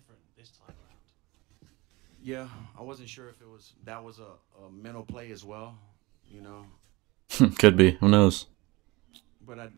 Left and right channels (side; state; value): left; quieter; 22.6 dB